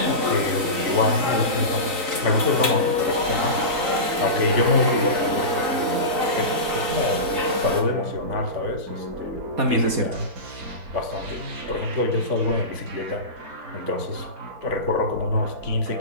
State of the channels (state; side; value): late; left; 3.9 ms